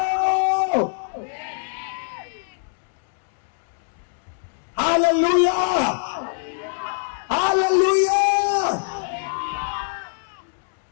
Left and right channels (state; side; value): silent; right; digital silence